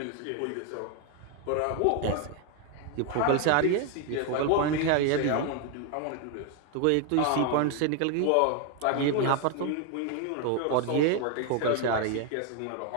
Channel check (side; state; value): both; different; correlation 0.01